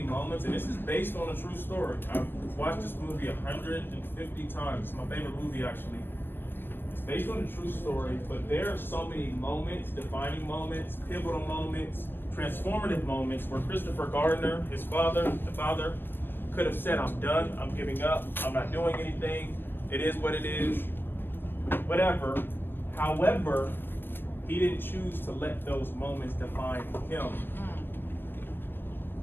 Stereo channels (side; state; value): right; late; 0.097 ms